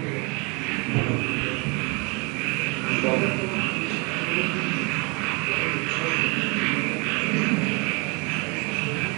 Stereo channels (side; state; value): left; quieter; 30.1 dB